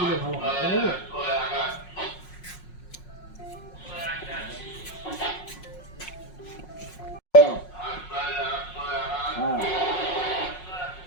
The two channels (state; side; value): late; right; 5.5 ms